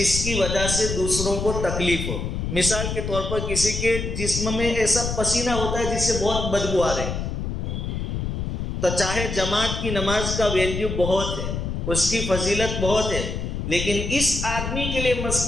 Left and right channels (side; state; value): left; noise; rumble, 3 dB below the sound